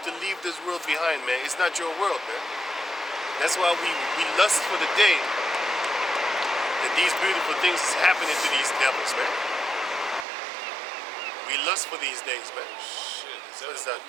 to leave this world behind, man. It's not your world, man. That's why we lust for the day that these beautiful things is happening to these devils, man. We lust for these days, man. Shit, What is that?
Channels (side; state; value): left; drops out; at 10.2 s